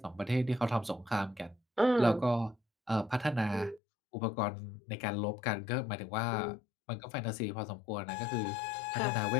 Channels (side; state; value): right; drops out; at 3.8 s